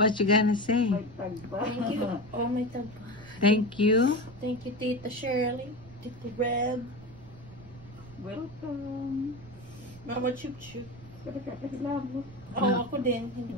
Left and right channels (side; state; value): right; noise; rumble, 19 dB below the sound